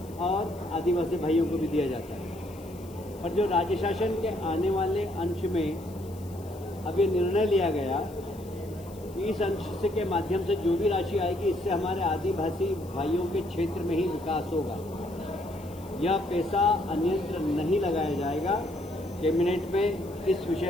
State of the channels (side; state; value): left; noise; hiss, 23 dB below the sound